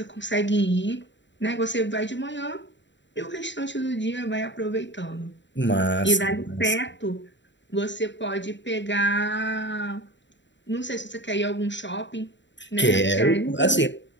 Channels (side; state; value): right; late; 0.53 ms